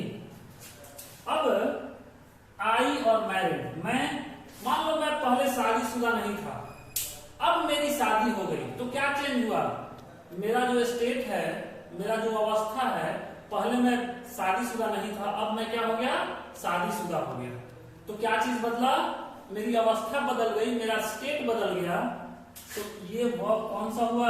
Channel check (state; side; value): identical; both; correlation 1.00